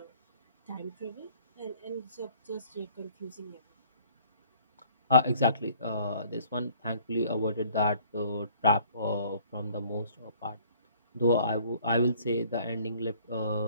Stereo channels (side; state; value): both; inverted; correlation -0.57